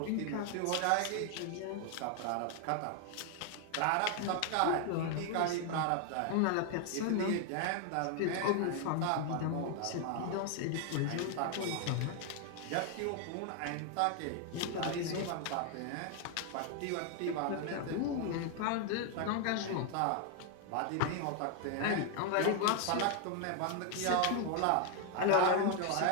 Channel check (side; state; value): both; different; correlation 0.00